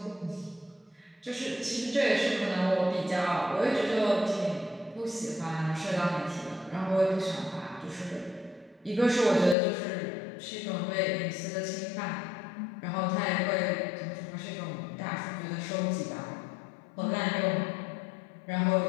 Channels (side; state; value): right; drops out; at 9.6 s